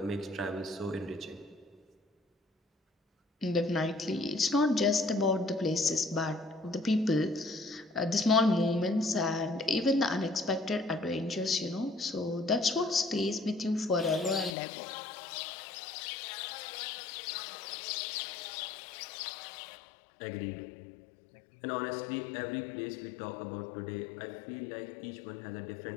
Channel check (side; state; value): right; drops out; at 14.6 s